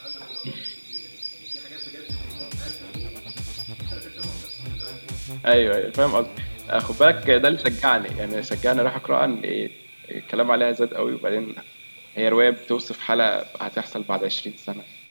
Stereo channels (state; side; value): inverted; both; correlation -1.00